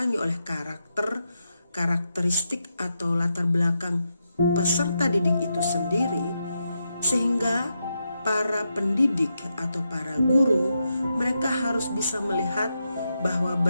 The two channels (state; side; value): inverted; both; correlation -0.85